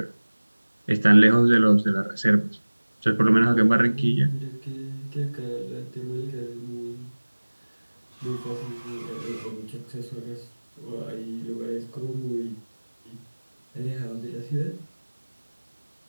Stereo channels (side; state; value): both; inverted; correlation -1.00